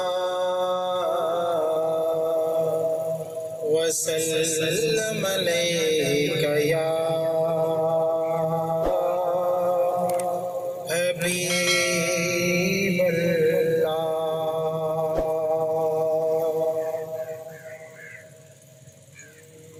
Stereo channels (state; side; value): identical; both; correlation 1.00